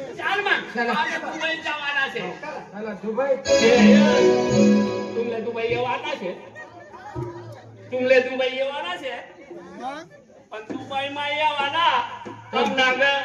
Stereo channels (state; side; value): identical; both; correlation 1.00